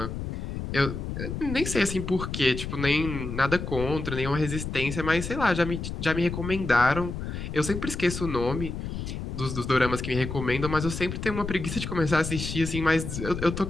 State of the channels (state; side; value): noise; left; rumble, 6 dB below the sound